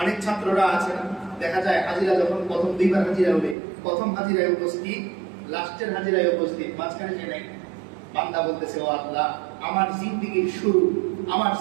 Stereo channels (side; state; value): left; drops out; at 3.6 s